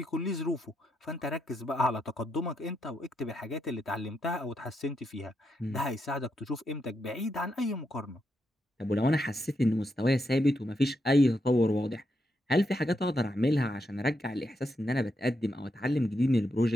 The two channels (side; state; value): both; normal; correlation 0.82